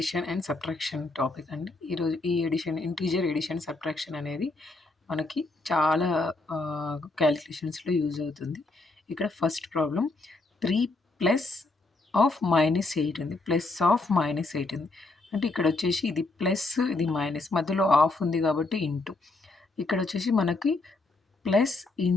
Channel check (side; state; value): right; quieter; 3.2 dB